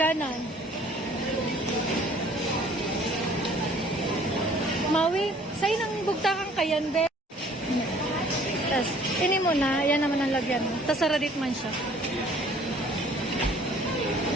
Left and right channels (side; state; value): both; normal; correlation 0.55